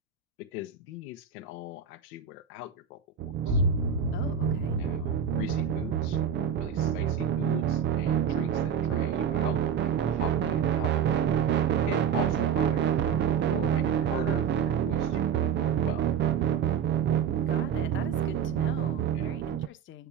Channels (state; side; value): quieter; left; 7.7 dB